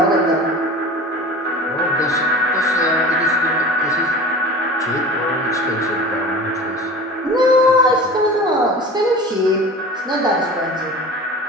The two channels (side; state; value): both; normal; correlation 0.37